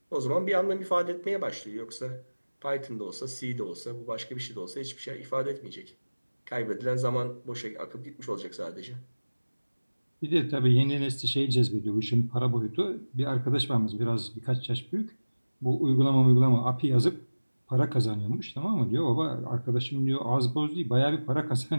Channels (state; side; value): inverted; both; correlation -1.00